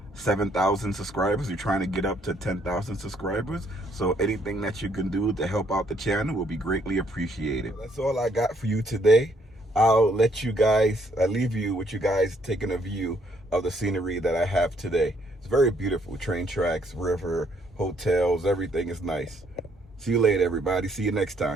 7,000 subscribers. We're trying to get up to 10,000 subscribers. So anything that you can do to help out the channel will be greatly appreciated. That's all I got for you today. I'll leave you with you guys taking a view of the scenery that I have today. It's very beautiful. Train tracks, river, hotels, everything is nice. See you later, everybody. See you next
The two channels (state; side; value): normal; both; correlation 0.68